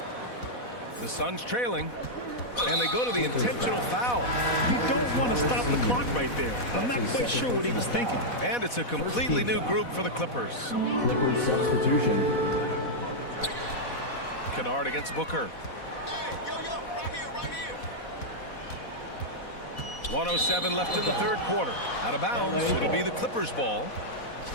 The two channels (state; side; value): late; right; 4.1 ms